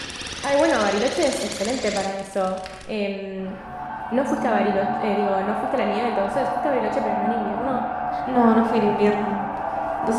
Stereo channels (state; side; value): identical; both; correlation 1.00